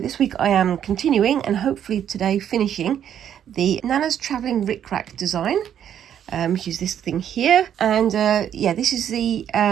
this week I am continuing and hopefully today finishing the Nanna's Travelling Rick Rack design, which is this thing here. And yeah, this is the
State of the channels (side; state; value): left; quieter; 9.6 dB